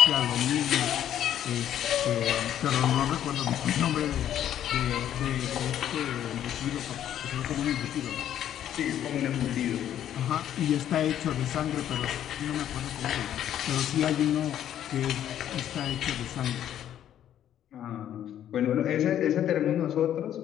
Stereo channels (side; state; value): right; quieter; 10.8 dB